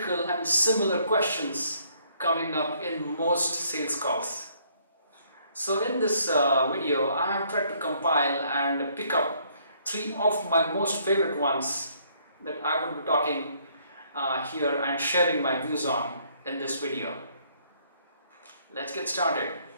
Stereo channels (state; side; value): inverted; both; correlation -0.66